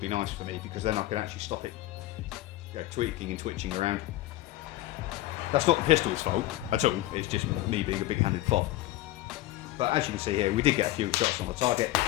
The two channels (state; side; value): quieter; right; 16.1 dB